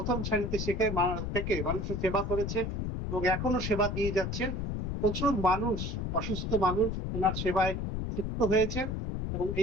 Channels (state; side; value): noise; left; rumble, 2 dB below the sound